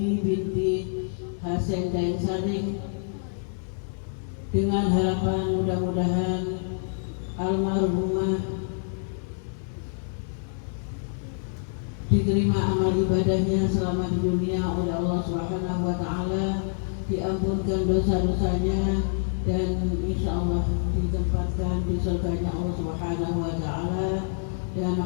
binti Hasan Daeng Saring, dengan harapan mudah-mudahan almarhumah diterima amal ibadahnya selama di dunia oleh Allah Subhanahu wa ta'ala, diampunkan dosa-dosanya, dan insya Allah ditempatkan di surganya Allah Subhanahu wa ta'ala dan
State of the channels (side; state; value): right; silent; digital silence